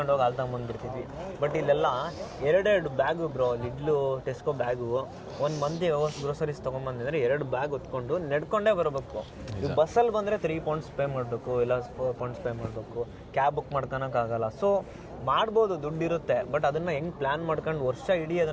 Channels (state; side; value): identical; both; correlation 1.00